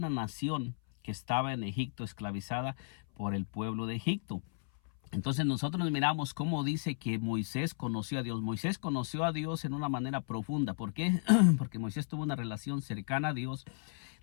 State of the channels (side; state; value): right; silent; 55 dB below the other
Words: nación que estaba en Egipto, esclavizada por el pueblo de Egipto. Entonces nosotros miramos cómo dice que Moisés conoció a Dios. Moisés conoció a Dios en una manera profunda. ¿Por qué? Porque Moisés tuvo una relación cercana a Dios.